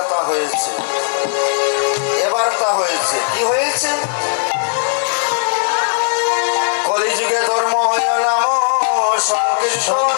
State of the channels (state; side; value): silent; right; digital silence